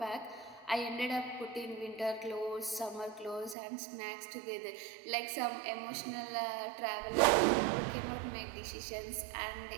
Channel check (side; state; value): left; drops out; at 3.6 s